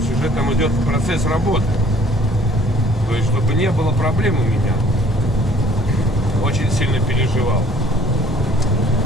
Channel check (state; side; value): normal; both; correlation 0.56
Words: уже там идет процесс работы. То есть, чтобы не было проблем у меня. Очень сильно переживал.